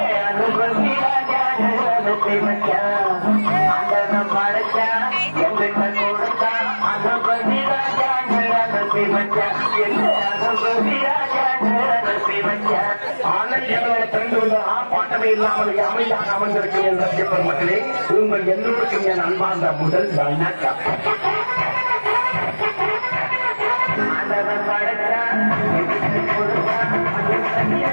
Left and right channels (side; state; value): both; inverted; correlation -1.00